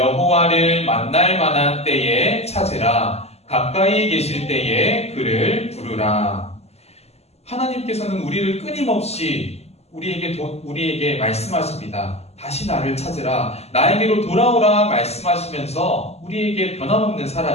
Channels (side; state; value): right; late; 0.30 ms